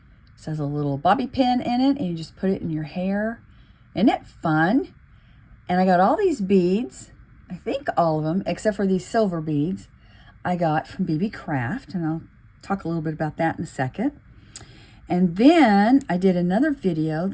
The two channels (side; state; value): both; identical; correlation 1.00